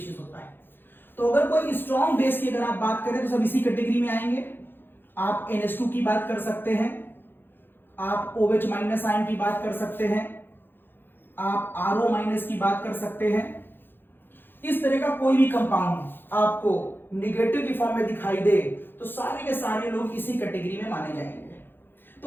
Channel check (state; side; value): late; right; 0.099 ms